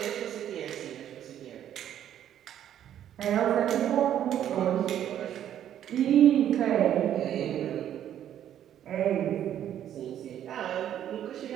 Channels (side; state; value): left; quieter; 10.7 dB